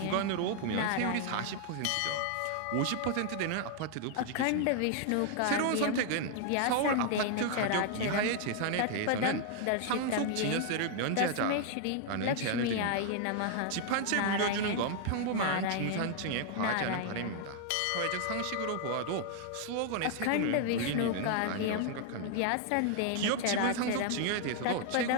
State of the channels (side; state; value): both; different; correlation 0.00